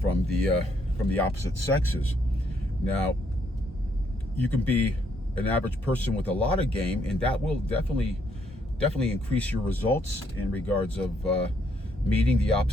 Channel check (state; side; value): normal; both; correlation 0.71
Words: the opposite sexes. Now, you can be an average person with a lot of game, and that will definitely increase your results in regards of meeting the